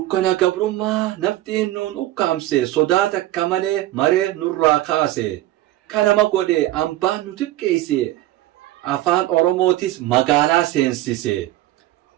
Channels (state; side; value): quieter; left; 15.6 dB